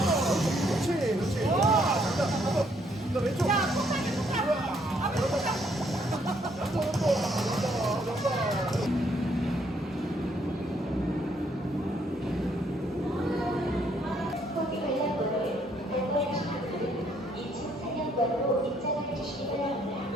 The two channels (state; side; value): normal; both; correlation 0.69